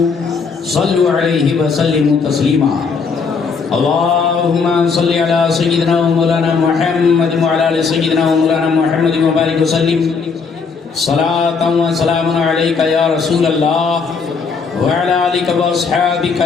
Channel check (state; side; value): quieter; right; 5.2 dB